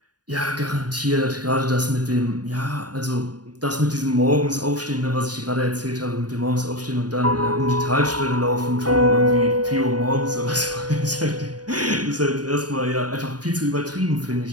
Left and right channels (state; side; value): late; left; 0.69 ms